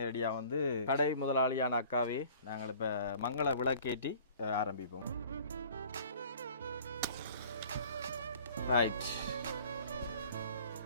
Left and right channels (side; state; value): both; inverted; correlation -0.50